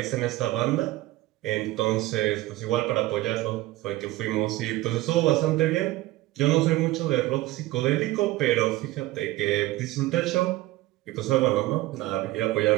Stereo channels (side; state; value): left; quieter; 17.7 dB